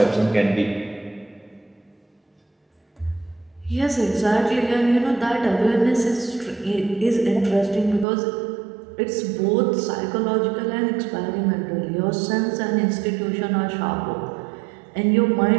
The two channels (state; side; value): drops out; left; at 8.1 s